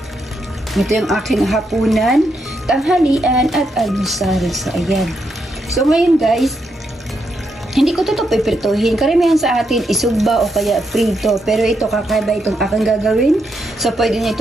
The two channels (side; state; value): both; normal; correlation 0.81